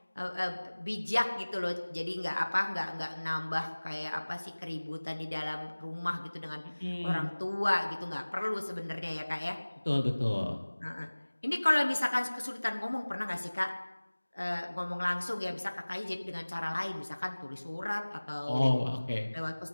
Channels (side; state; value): both; inverted; correlation -1.00